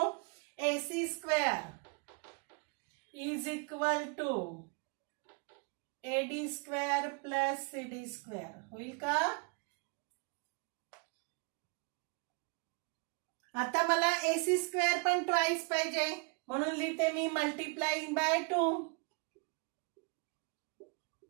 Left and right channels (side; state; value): left; quieter; 34.8 dB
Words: AC square is equal to AD square plus CD square होईल का? आता मला AC स्क्वेअर पण ट्वाइस पाहिजे, म्हणून लिहिते मी मल्टिप्लाइंग बाय 2.